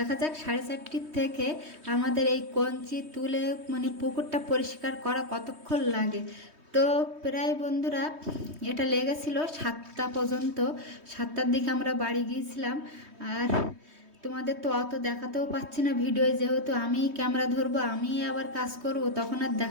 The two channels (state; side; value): late; left; 3.2 ms